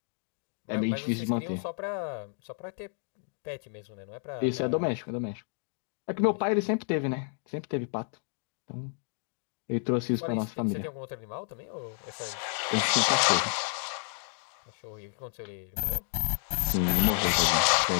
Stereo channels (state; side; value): silent; right; 57 dB below the other